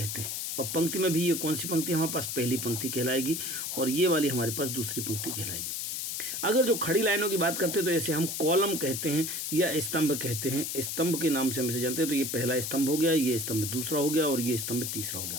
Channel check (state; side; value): noise; left; hiss, 3 dB below the sound